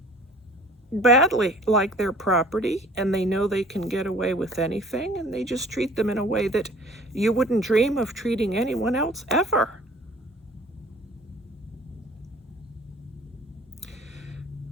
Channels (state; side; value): normal; both; correlation 0.50